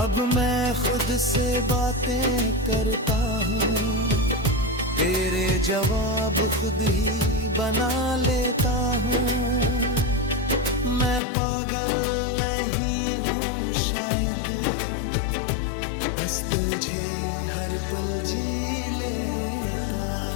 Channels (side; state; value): right; drops out; at 11.2 s